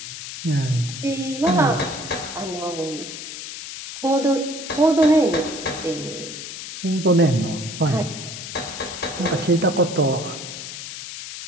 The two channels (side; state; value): left; noise; hiss, 9 dB below the sound